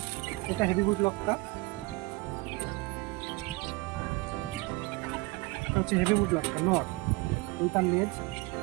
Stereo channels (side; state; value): left; quieter; 23.6 dB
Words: এটা হেভিবুট লক্কা, এটা হচ্ছে হেভিবুট লক্কা নর। এই তার লেজ,